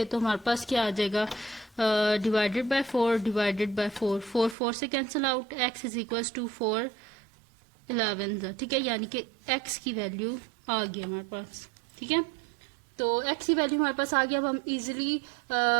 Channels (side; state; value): left; drops out; at 4.5 s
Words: तो हमारे पास क्या आ जाएगा, डिवाइडेड बाय 4 डिवाइडेड बाय 4, 4 से cancel out, x is equals to 4 11, ठीक है, यानी कि x की वैल्यू आ गई हमारे पास, ठीक है। तो x की वैल्यू हमारे पास आ गया। अब हम इजीली